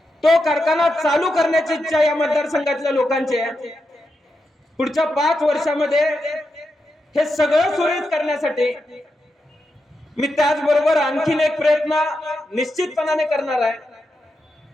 तो कारखाना चालू करण्याची इच्छा या मतदारसंघातल्या लोकांची आहे. पुढच्या 5 वर्षामध्ये हे सगळं सुरळीत करण्यासाठी मी त्याचबरोबर आणखीन एक प्रयत्न निश्चितपणाने करणार आहे.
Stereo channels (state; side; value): normal; both; correlation 0.87